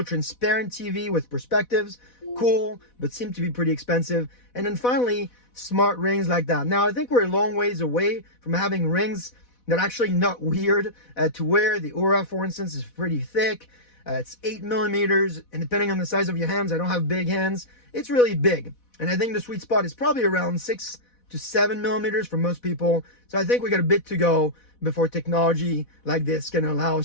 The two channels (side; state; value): right; late; 4.1 ms